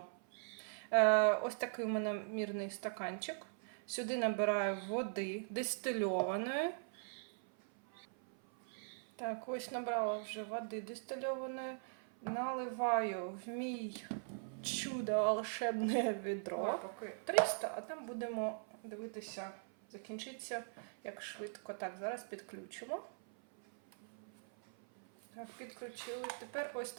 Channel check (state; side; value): silent; left; 51 dB below the other